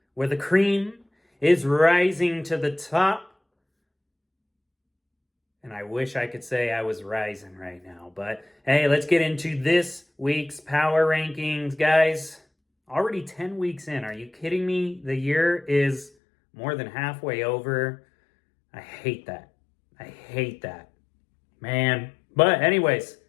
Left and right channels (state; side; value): drops out; right; at 16.1 s